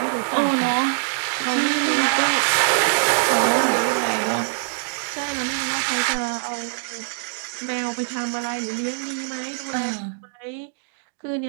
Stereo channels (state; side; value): silent; left; digital silence